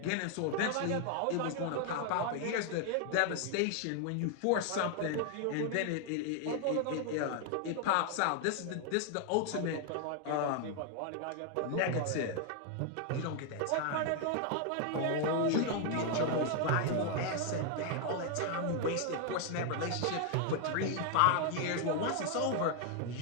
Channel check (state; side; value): different; both; correlation 0.00